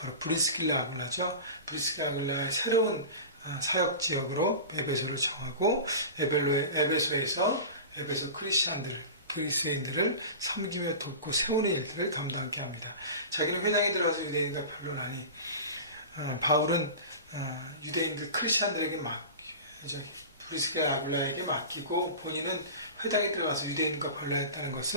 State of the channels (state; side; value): inverted; both; correlation -0.32